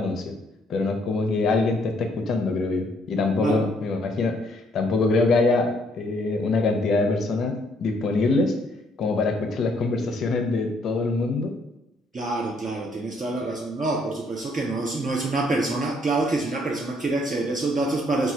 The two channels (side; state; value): both; normal; correlation 0.68